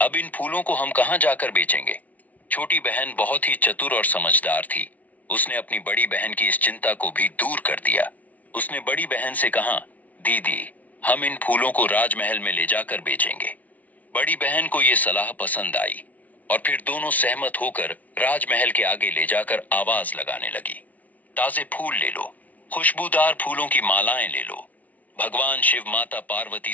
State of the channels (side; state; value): right; late; 0.073 ms